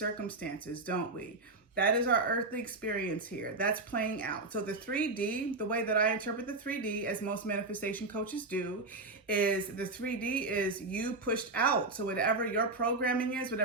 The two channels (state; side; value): quieter; left; 3.3 dB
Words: don't we? That is our earthly experience here. That's playing out. So the 3D, the way that I interpret the 3D, as most manifestation coaches do, is the 3D is you pushed out. So whatever your programming is,